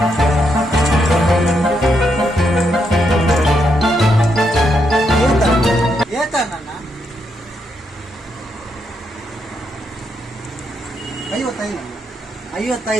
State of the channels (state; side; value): normal; both; correlation 0.80